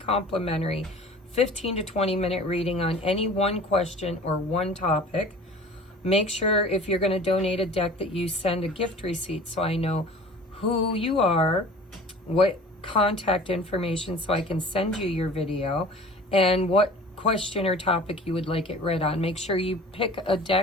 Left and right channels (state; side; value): normal; both; correlation 0.43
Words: 15 to 20 minute reading on any one question or one topic. Make sure if you're going to donate a deck that you send a gift receipt so I know who you are, what contact information so I can send you your video, and what question or topic you would like it read on. Make sure you pick a